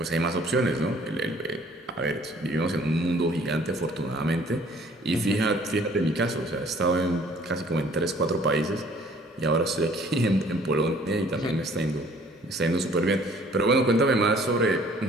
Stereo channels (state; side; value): normal; both; correlation 0.56